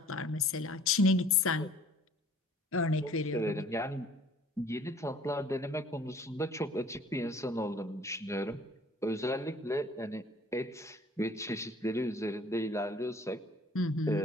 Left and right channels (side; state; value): both; normal; correlation 0.53